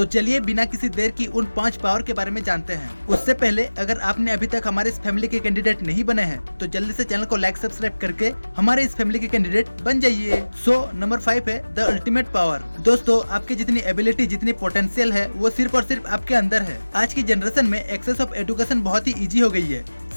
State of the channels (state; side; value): inverted; both; correlation -1.00